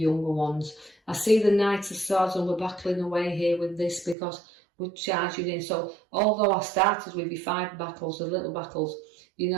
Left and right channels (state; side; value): drops out; left; at 4.2 s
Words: ones. I see the Knight of Swords, and we're battling away here with this because we're charging in. So although I started with your 5 battles, the little battles, you